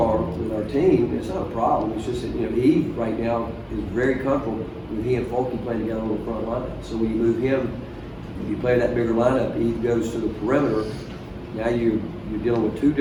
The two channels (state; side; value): identical; both; correlation 1.00